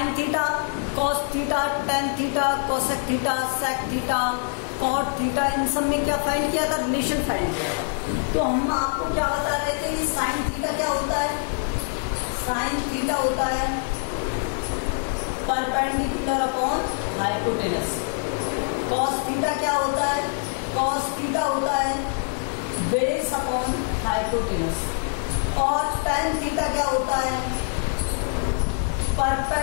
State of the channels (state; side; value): silent; right; digital silence